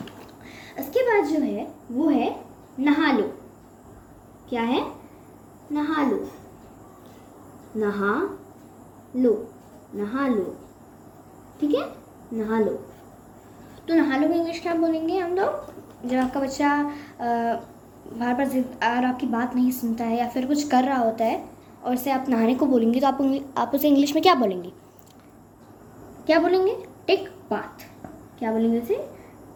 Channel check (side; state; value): both; identical; correlation 1.00